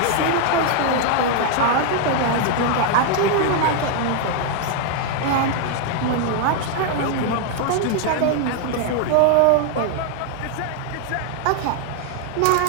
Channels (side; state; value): both; different; correlation 0.00